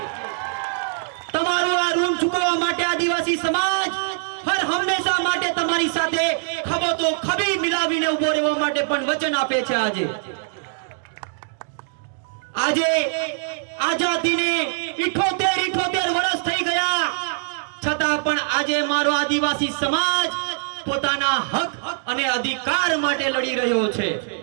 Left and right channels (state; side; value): silent; left; digital silence